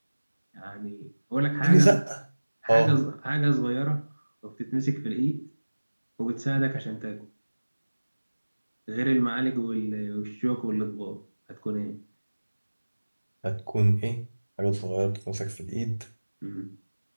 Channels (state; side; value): inverted; both; correlation -1.00